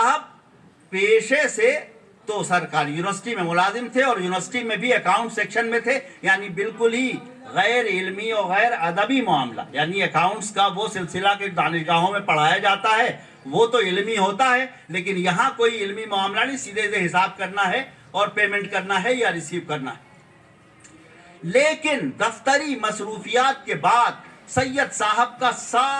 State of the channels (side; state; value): both; identical; correlation 1.00